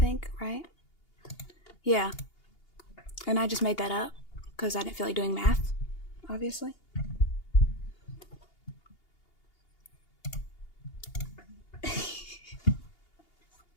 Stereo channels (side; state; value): right; late; 2.8 ms